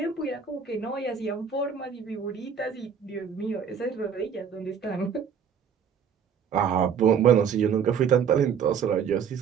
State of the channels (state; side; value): quieter; left; 7.2 dB